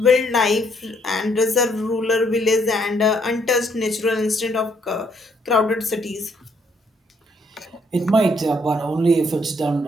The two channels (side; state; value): both; normal; correlation 0.69